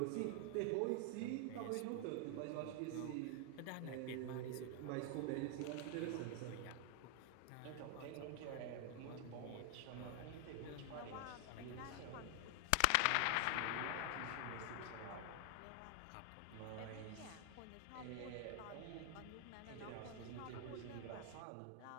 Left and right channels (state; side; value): different; both; correlation 0.00